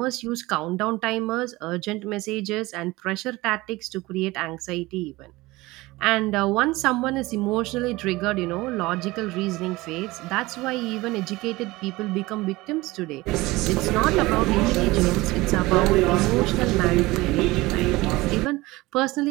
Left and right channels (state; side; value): quieter; left; 20.5 dB